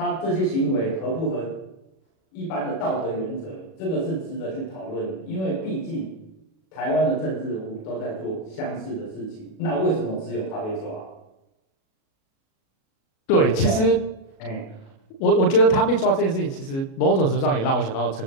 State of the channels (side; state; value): right; late; 37 ms